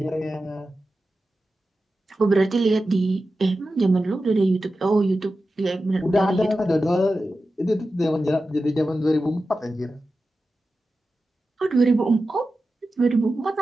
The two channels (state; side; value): normal; both; correlation 0.93